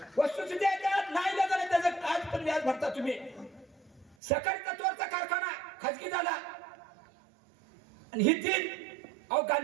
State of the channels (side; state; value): left; drops out; at 4.2 s